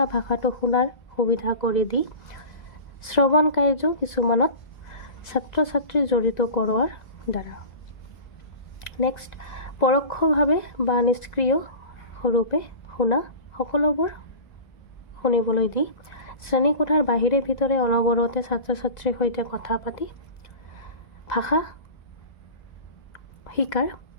ভাষাটো শুনাৰ সুবিধা কৰি দি শ্ৰৱণ কাৰ্য কিছুমানত ছাত্ৰ ছাত্ৰী জড়িত কৰোৱাৰ দ্বাৰা। নেক্সট, পৰোক্ষভাৱে বা নিষ্ক্ৰিয় ৰূপে শুনা সকলোবোৰ শুনিবলৈ দি শ্ৰেণীকোঠাৰ বাহিৰে ভিতৰে অনবৰতে ছাত্ৰ ছাত্ৰীৰ সৈতে কথা পাতি ভাষা শিকাৰ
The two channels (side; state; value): right; late; 1.9 ms